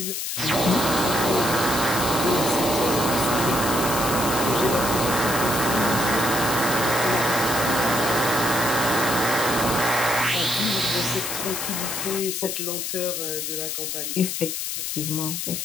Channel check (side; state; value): left; noise; hiss, 3 dB below the sound